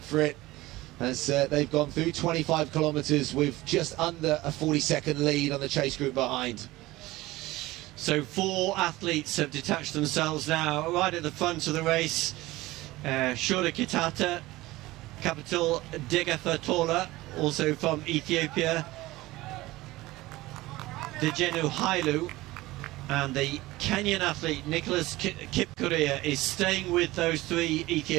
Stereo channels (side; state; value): left; quieter; 18.7 dB